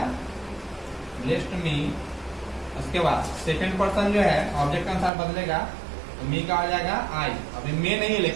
ब्लेस्ड मी। उसके बाद सेकंड पर्सन जो है ऑब्जेक्ट के अनुसार बदलेगा तो मी का हो जाएगा आई। अभी मे नहीं है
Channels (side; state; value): left; drops out; at 5.1 s